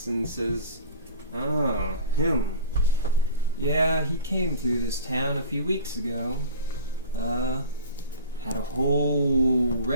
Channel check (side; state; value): both; inverted; correlation -0.38